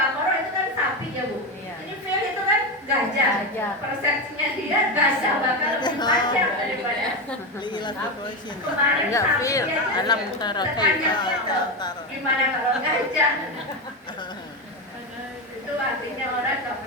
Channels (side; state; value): both; normal; correlation 0.15